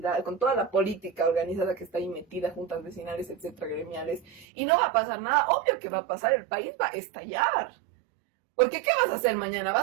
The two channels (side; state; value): left; drops out; at 4.5 s